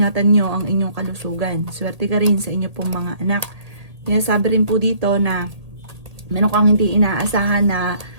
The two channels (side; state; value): left; late; 1.8 ms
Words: nyo ang inyong kalusugan. Swerte ka rin sa inyo pong mga anak. Kaya sabi rin po dito na meron kang hindi inaasahan